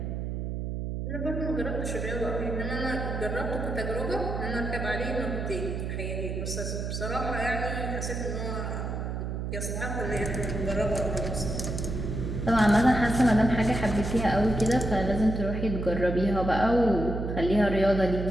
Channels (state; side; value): noise; right; hum, 3 dB below the sound